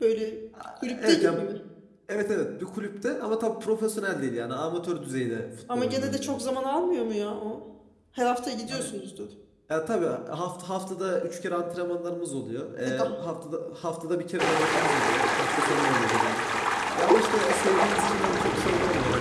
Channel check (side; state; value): both; identical; correlation 1.00